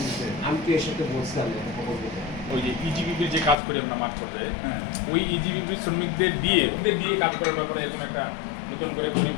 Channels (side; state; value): right; drops out; at 3.6 s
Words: আমি তো এর সাথে বলছিলাম ওই যে ইজিবিপির যে কাজ করি আমরা মাঠ পর্যায়ে ওই ইজিবিপি শ্রমিকদের দিয়ে কাজ করার ব্যাপারে এরকম একটা নতুন করে